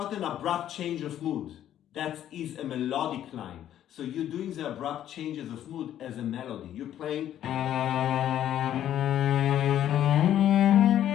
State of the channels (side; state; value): right; quieter; 11.3 dB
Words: an abrupt change of mood. That is a melodic line. So you're doing the abrupt changes of mood as a melody. You're playing.